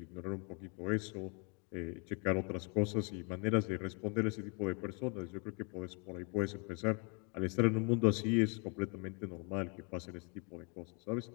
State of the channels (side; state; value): right; quieter; 35.3 dB